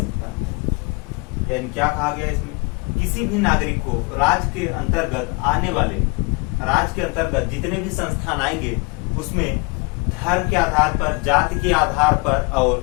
यानी क्या कहा गया इसमें, किसी भी नागरिक को राज्य के अंतर्गत आने वाले, राज्य के अंतर्गत जितने भी संस्थान आएंगे उसमें धर्म के आधार पर, जाति के आधार पर और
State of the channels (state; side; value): quieter; right; 29.0 dB